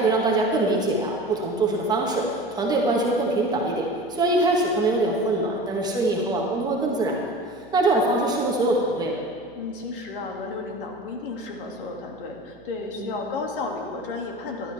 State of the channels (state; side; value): noise; right; hum, 24 dB below the sound